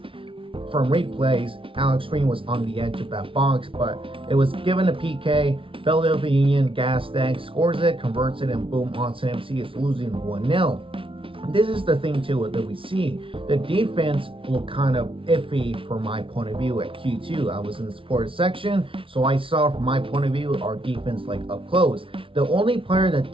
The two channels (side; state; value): left; late; 0.25 ms